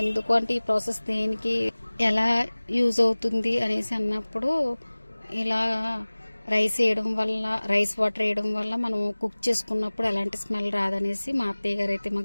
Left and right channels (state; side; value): inverted; both; correlation -1.00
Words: ఎందుకు అంటే ఈ ప్రాసెస్ దేనికి, ఎలా యూజ్ అవుతుంది అనేసి అన్నప్పుడు, ఇలా రైస్ వేయడం వల్ల, రైస్ వాటర్ వేయడం వల్ల మనం కుక్ చేసుకున్నప్పుడు ఎలాంటి స్మెల్ రాదనేసి మా అత్తయ్య గారు అయితే